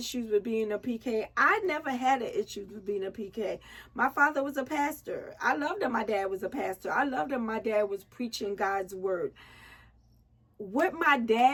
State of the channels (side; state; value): both; identical; correlation 1.00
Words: with being a PK. I never had an issue with being a PK. My father was a pastor. I loved that my dad was a pastor. I loved that my dad was preaching God's word. What my